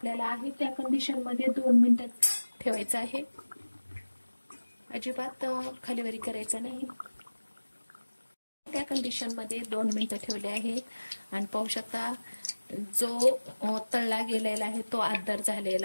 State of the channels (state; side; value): inverted; both; correlation -1.00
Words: आहे त्या कंडिशन मध्ये 2 मिनिटं ठेवायचं आहे. अजिबात खालीवरी करायचं नाही. त्या कंडिशन मध्ये 2 मिनिटं ठेवले आहेत आणि पाहू शकता जो तळला गेलेला आहे तो आदर